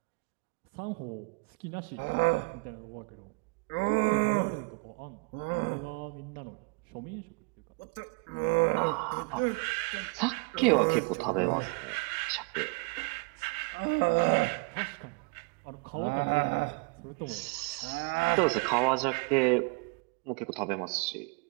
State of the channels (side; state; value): left; quieter; 31.0 dB